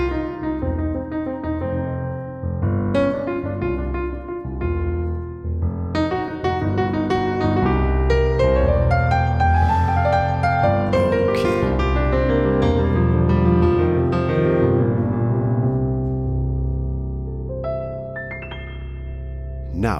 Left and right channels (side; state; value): both; identical; correlation 1.00